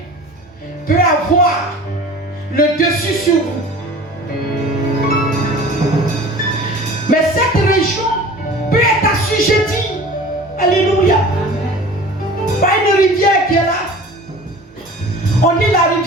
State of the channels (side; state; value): both; normal; correlation 0.41